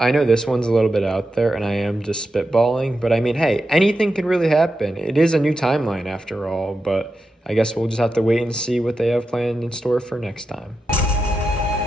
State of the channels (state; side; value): normal; both; correlation 0.89